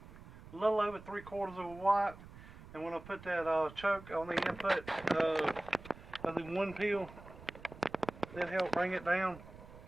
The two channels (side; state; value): right; noise; rumble, 17 dB below the sound